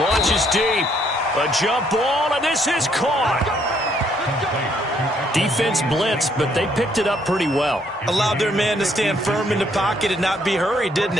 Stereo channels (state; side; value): normal; both; correlation 0.69